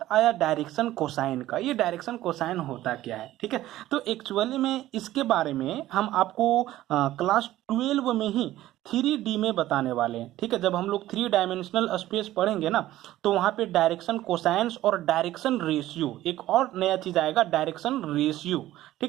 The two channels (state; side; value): quieter; left; 14.8 dB